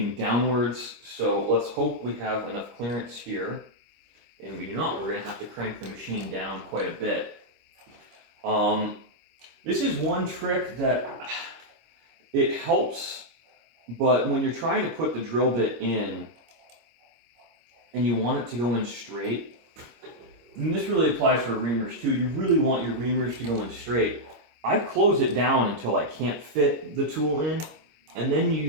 downwards, so let's hope we have enough clearance here. And we do not, we're going to have to crank the machine down quite a bit. This is one trick that it helps, but when you're trying to put the drill bit in and you want it to go in straight, and this really applies for reamers too, you really want your reamers to go in straight. I close it down until I can't fit the tool in, and then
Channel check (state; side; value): late; left; 25 ms